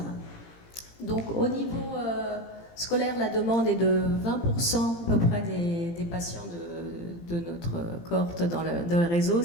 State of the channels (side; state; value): right; late; 17 ms